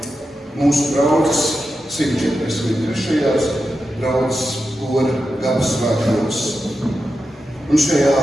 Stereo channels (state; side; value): normal; both; correlation 0.89